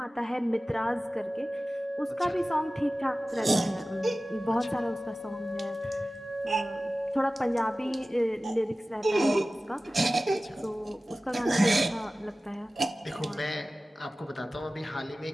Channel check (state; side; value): normal; both; correlation 0.96